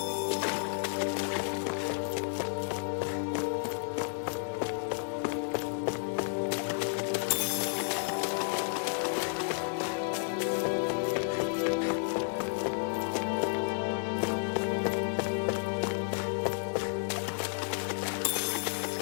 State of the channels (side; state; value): right; silent; 57 dB below the other